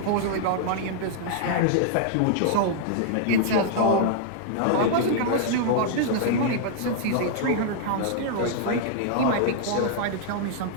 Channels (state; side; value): different; both; correlation -0.01